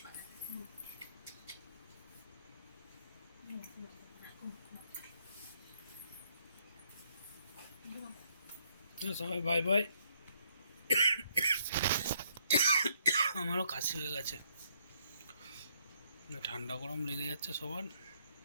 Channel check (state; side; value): inverted; both; correlation -0.71